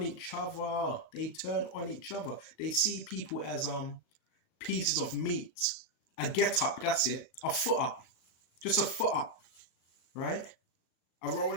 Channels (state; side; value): late; right; 38 ms